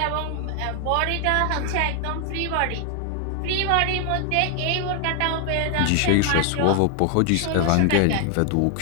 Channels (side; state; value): both; different; correlation 0.00